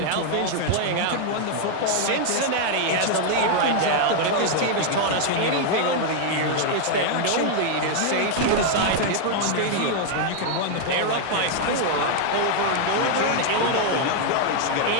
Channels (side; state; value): both; different; correlation 0.00